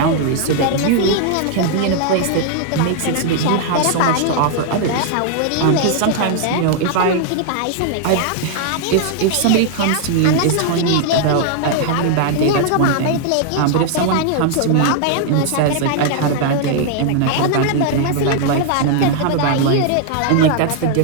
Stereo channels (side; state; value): both; different; correlation 0.00